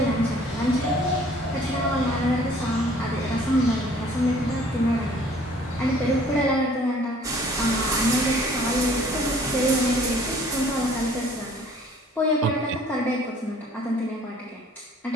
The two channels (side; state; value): both; normal; correlation 0.54